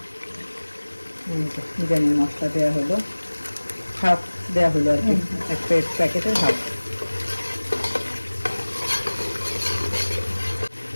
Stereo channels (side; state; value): both; inverted; correlation -1.00